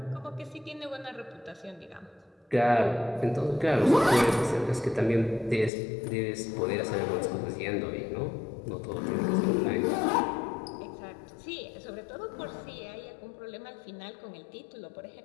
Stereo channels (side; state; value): right; drops out; at 5.7 s